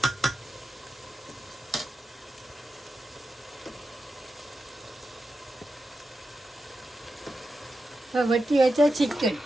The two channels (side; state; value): both; normal; correlation 0.90